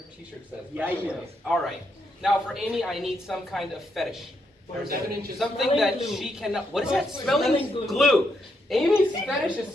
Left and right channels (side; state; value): both; normal; correlation 0.79